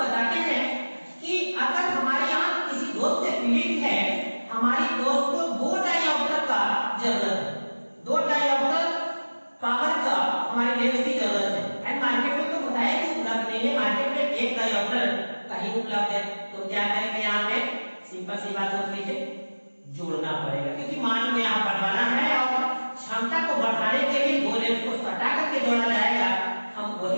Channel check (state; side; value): inverted; both; correlation -1.00